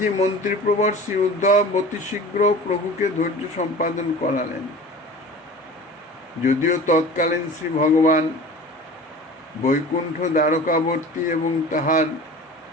মন্ত্রীপ্রবর শ্রী উদ্ধব অতি শীঘ্র প্রভুকে ধৈর্য সম্পাদন করালেন। যদিও তৎকালীন শ্রী ভগবান বৈকুণ্ঠ দ্বারকাবর্তী এবং তাহার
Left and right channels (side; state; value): both; normal; correlation 0.39